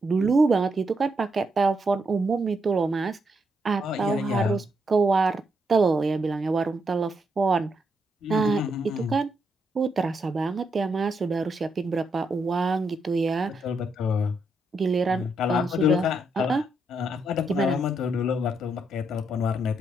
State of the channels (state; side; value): normal; both; correlation 0.79